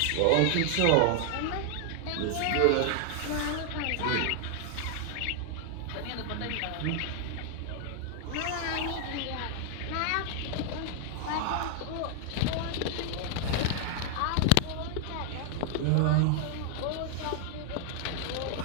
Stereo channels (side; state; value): both; different; correlation 0.00